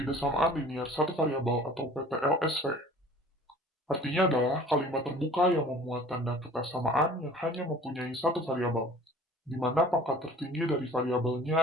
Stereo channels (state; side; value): normal; both; correlation 0.47